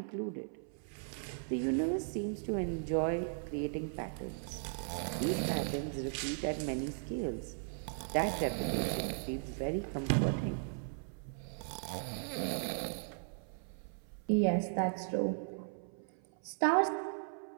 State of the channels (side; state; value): left; silent; 53 dB below the other